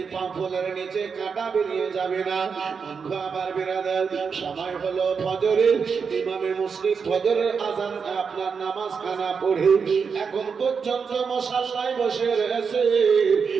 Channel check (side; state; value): left; quieter; 5.8 dB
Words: পা ফুলের নিচে কাঁটা বেরিয়ে যাবে না। বন্ধু আমার বিরাদার, সময় হলো ফজরের। ইমামে মুসলিম ফজরের আযান আপনার নামাজ খানা পড়ে এখন পর্যন্ত মুসাল্লায় বসে রয়েছে,